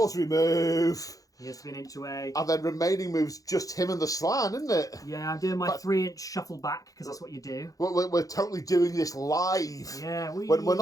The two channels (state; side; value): late; right; 0.17 ms